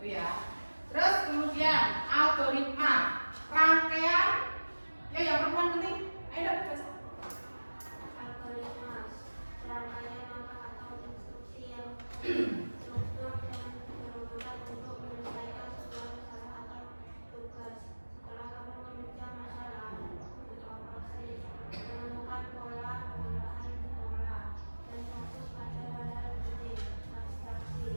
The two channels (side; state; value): both; inverted; correlation -1.00